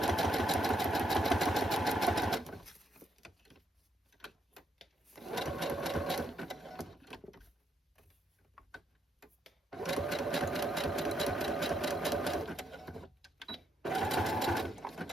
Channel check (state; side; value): normal; both; correlation 0.77